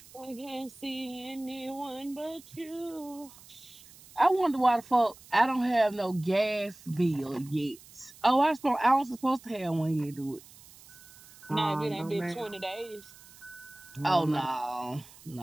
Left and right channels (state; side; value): noise; right; hiss, 22 dB below the sound